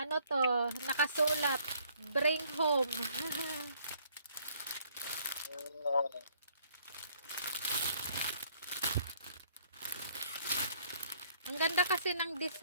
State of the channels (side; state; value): both; inverted; correlation -0.63